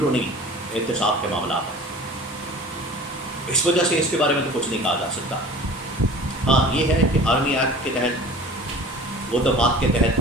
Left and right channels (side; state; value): both; normal; correlation 0.42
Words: एहतसाब के मामला हैं। इस वजह से इसके बारे में तो कुछ नहीं कहा जा सकता। हाँ, ये है कि आर्मी एक्ट के तहत, वो दफात के तहत